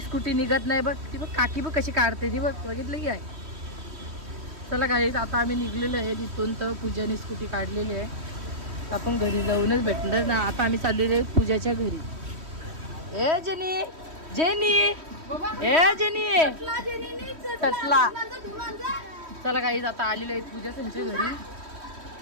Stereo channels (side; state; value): left; late; 3.1 ms